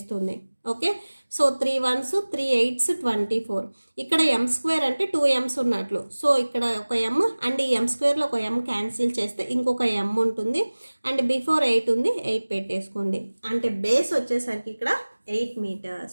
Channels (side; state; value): both; inverted; correlation -1.00